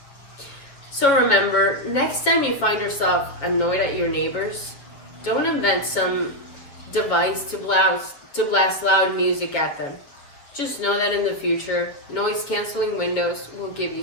So remember, next time you find yourself annoyed at your neighbors, don't invent some device to blast loud music at them. Just know that in the future, noise canceling windows will give you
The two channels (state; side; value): late; right; 7.4 ms